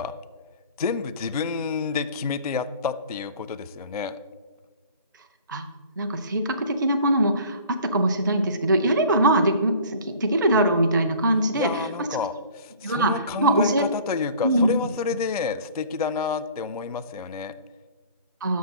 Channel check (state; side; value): inverted; both; correlation -0.47